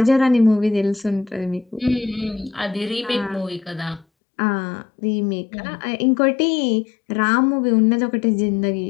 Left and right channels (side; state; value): right; drops out; at 4.0 s